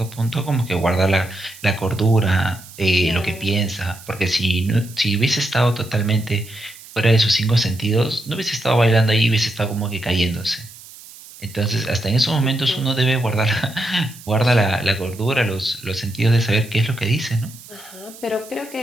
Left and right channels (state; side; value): noise; right; hiss, 19 dB below the sound